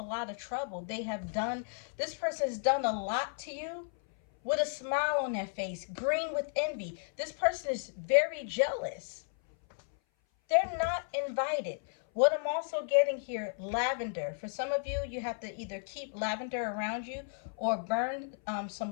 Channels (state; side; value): silent; right; 55 dB below the other